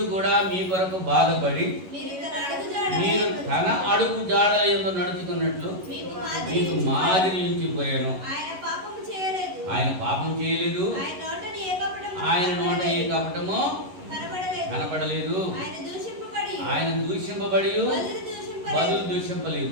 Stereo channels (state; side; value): late; left; 11 ms